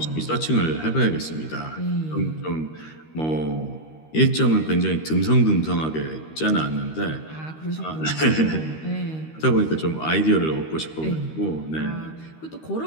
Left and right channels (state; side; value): late; right; 13 ms